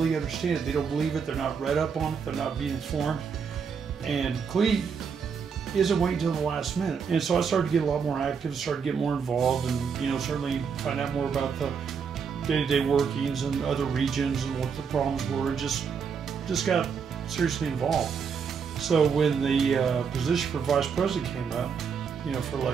understand it. They don't believe it. They're not read up on it. They're not being informed. And Cleat isn't waiting till the last minute. And so I started to get a lot more active, started to get more involved, and certainly find out more about the day-to-day workings and other regions and what the problems were. Just got seriously involved. So when the position for vice president came up, for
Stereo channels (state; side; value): quieter; left; 6.3 dB